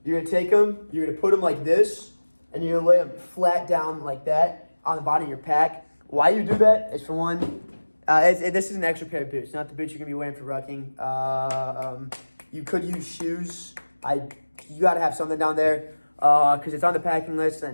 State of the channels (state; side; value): inverted; both; correlation -1.00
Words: You're gonna take them. You're gonna put them like this, and you're gonna lay them flat down like that on the bottom of your pack. Why you do that is for one. This is an extra pair of boots, not the boots you're gonna be wearing for rucking. You could use shoes. You gotta have something down there because it's on the packing list.